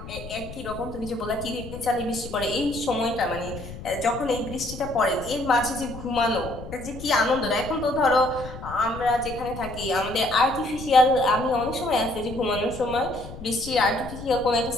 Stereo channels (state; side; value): noise; left; rumble, 12 dB below the sound